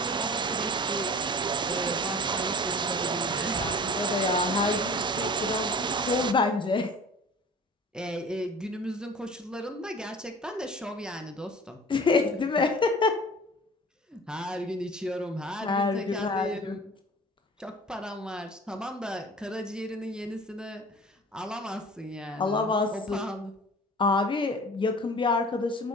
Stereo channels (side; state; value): both; normal; correlation 0.41